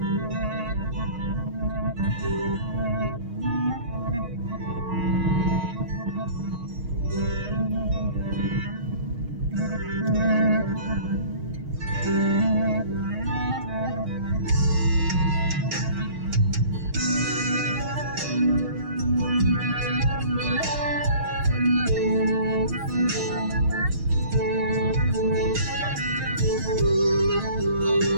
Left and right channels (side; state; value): left; late; 6.4 ms